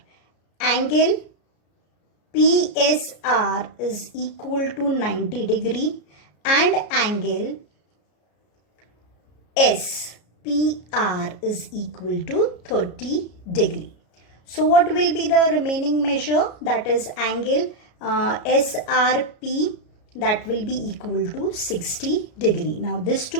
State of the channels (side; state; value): right; late; 33 ms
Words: Angle PSR is equal to 90 degree and angle SPR is equal to 30 degree. So what will be the remaining measure? That is angle SRP, that will be equal to 60 degree. Now these